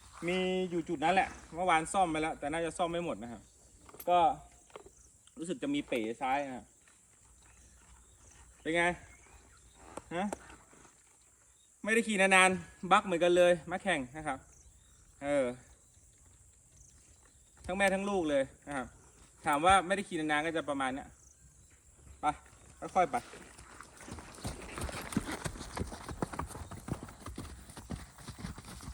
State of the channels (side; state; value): both; identical; correlation 1.00